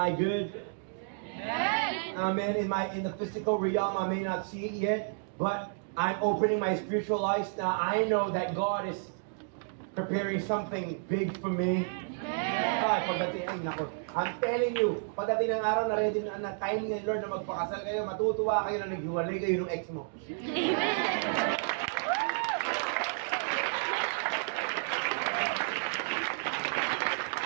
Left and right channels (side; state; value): left; silent; digital silence